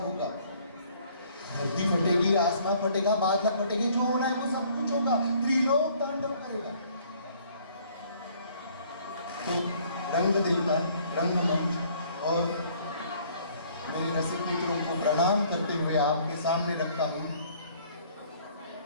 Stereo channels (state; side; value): inverted; both; correlation -0.59